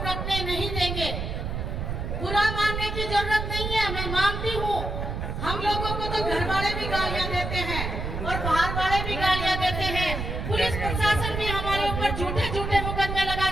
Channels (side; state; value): right; noise; rumble, 4 dB below the sound